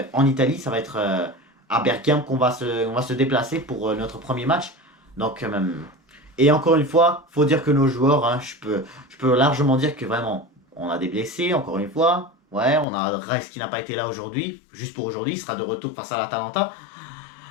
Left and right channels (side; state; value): right; drops out; at 12.9 s